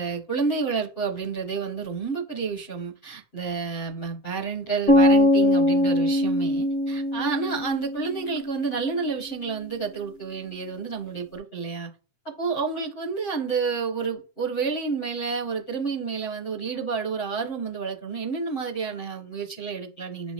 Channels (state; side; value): late; right; 7.6 ms